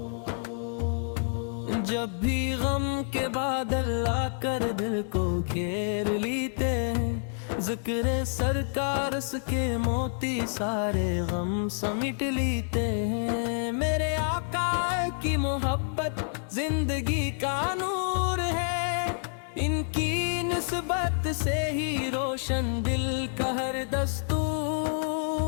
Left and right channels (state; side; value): silent; right; digital silence